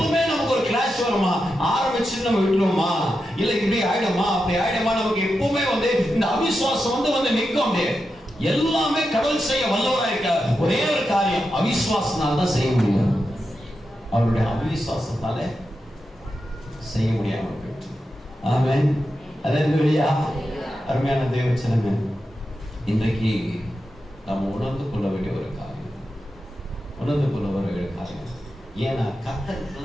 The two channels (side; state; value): both; normal; correlation 0.89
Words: நமக்கு ஒரு கிளாஷ் வருமா, ஆரம்பிச்சு நம்ம விட்டுருவோமா, இல்ல இப்படி ஆயிடுமா அப்படி ஆயிடுமா, நமக்கு எப்பவுமே வந்து இந்த அவிசுவாசம் வந்து நிற்கும். எல்லாமே கடவுள் செய்ய வல்லவரா இருக்க ஒரே ஒரு காரியம், அவிசுவாசனால தான் செய்ய முடியும். அவருடைய அவிசுவாசத்தால செய்ய முடியாம போயிட்டு. ஆமென். அல்லேலூயா. அருமையான தேவச்சனமே, இன்றைக்கு நாம் உணர்ந்து கொள்ள வேண்டிய ஒரு காரியம். ஏன்னா கர்த்தருக்கு